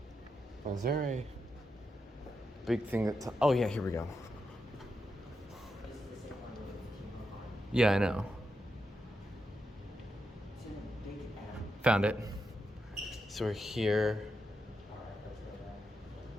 Is there a big thing that's... Oh, yeah, here we go. Yeah, I know. Found it. So we're here.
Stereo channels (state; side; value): normal; both; correlation 0.85